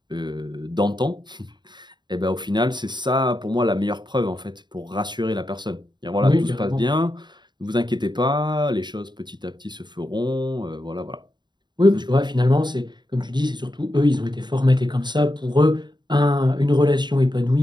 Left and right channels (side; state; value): left; late; 0.21 ms